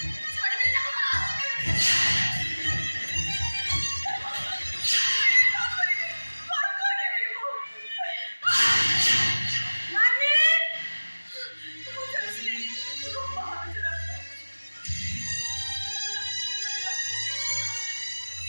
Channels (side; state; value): both; inverted; correlation -1.00